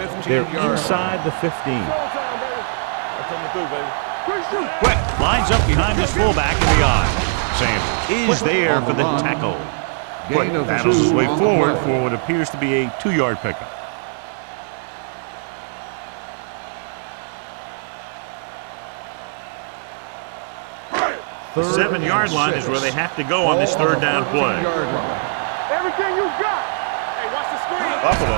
They're inside the 15. Quick lines up behind his fullback in the eye. Sanders is there for the tackle. Quick battles his way forward for what appears to be a 2-yard pickup. The 7-yard line is where they have to go on this third down play. Everything you got. Hey, watch the screen. Buffalo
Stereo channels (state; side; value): silent; left; digital silence